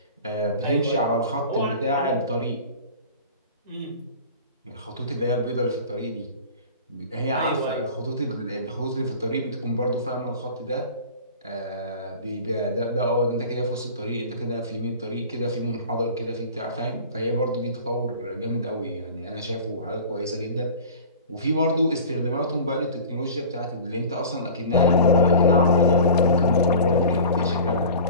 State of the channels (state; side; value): inverted; both; correlation -0.40